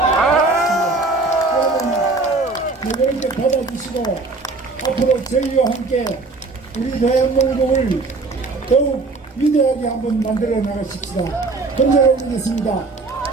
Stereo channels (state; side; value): quieter; left; 3.7 dB